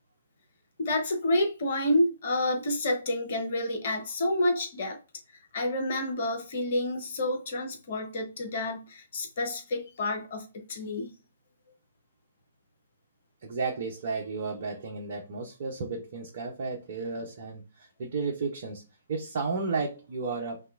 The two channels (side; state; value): both; inverted; correlation -0.70